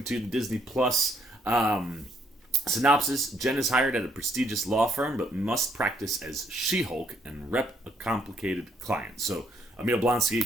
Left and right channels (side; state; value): both; normal; correlation 0.70